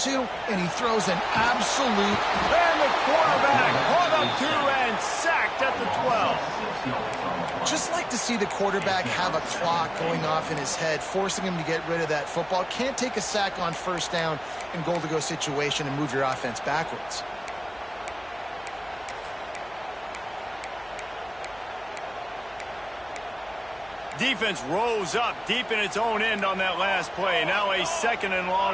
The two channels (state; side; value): noise; left; hum, 27 dB below the sound